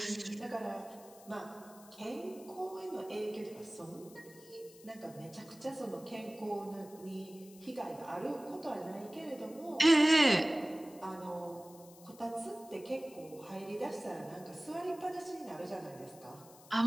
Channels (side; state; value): left; noise; hiss, 21 dB below the sound